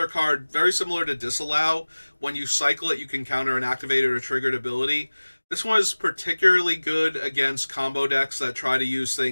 card very similar to Disallow. When you cycle it, you can counter an activated or triggered ability. This one is particularly good against combo decks that try to use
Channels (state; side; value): inverted; both; correlation -1.00